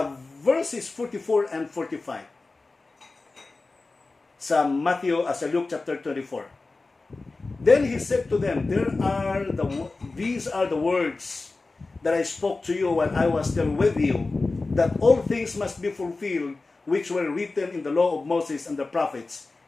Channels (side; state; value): right; quieter; 3.6 dB